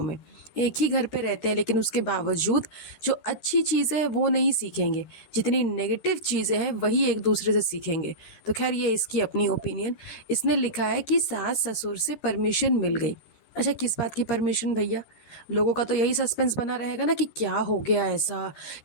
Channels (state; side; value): late; right; 13 ms